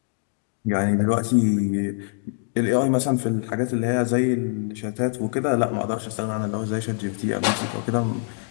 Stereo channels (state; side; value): silent; right; digital silence